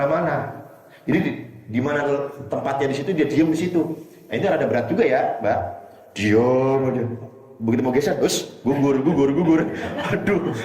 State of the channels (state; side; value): identical; both; correlation 1.00